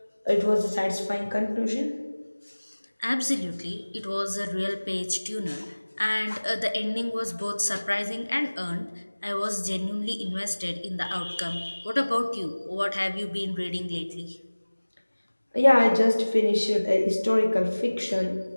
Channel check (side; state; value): both; inverted; correlation -1.00